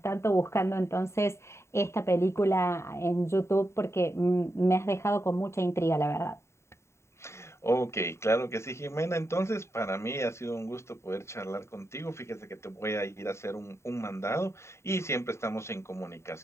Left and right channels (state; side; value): late; right; 0.13 ms